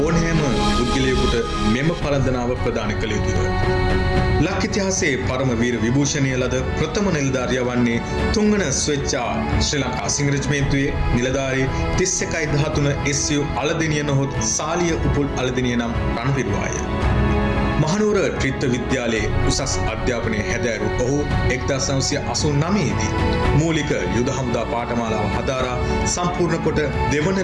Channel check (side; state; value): both; identical; correlation 1.00